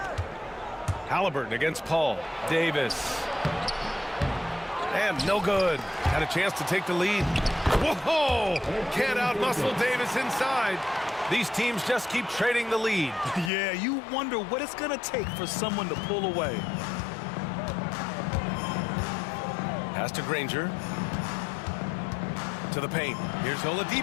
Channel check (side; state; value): right; drops out; at 13.5 s